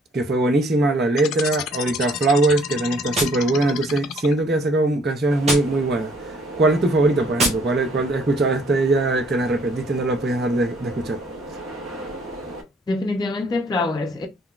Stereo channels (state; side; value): normal; both; correlation 0.62